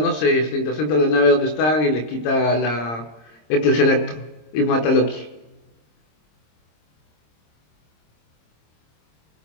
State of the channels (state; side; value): late; right; 26 ms